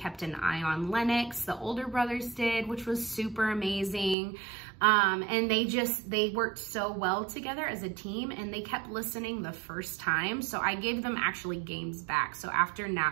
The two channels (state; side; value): drops out; left; at 4.2 s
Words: an eye on Lennox, the older brothers did, which was super amazing. And they worked so well together as a team, and they kept listening the first time. So I gave them actually games back. So after